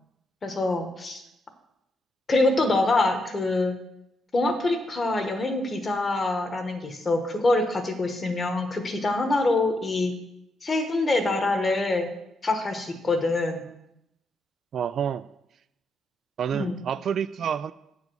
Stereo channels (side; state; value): both; normal; correlation 0.80